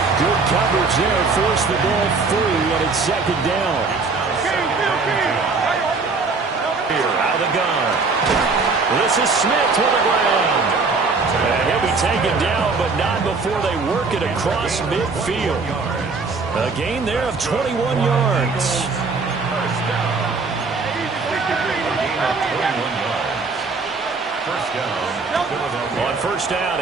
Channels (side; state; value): left; quieter; 4.3 dB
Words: Good coverage there, forced the ball free, and it's 2nd down. Here, out of the gun. This is Smith to the ground. And he'll be taken down, but not before they work it across midfield. A gain there of 21 yards. first down.